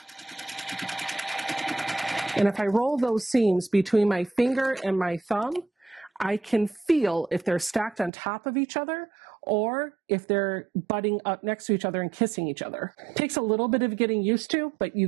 And if I roll those seams between my finger and my thumb, I can feel if they're stacked on top of each other or if they're butting up next to each other and kissing each other. It takes a little bit of getting used to, but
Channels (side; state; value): left; drops out; at 8.1 s